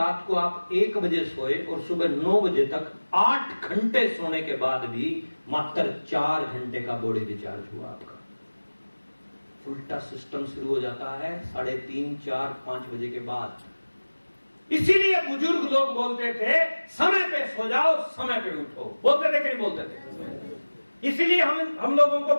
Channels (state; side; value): inverted; both; correlation -1.00